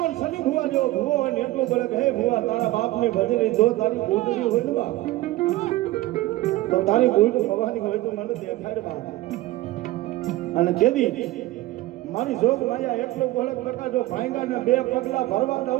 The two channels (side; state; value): left; quieter; 17.4 dB